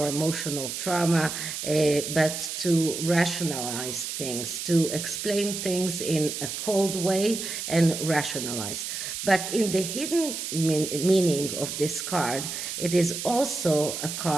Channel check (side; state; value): right; noise; hiss, 5 dB below the sound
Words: emotional trauma, but to rationalize things, to explain things in a cold way and rationalize. But in the hidden meaning of this card, it is also a